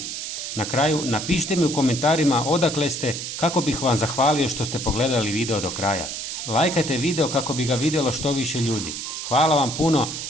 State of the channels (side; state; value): right; noise; hiss, 6 dB below the sound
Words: Na kraju, napišite mi u komentarima odakle ste, kako bih vam zahvalio što ste pogledali video do kraja. Lajkajte video kako bi ga vidjelo što više ljudi. Hvala vam puno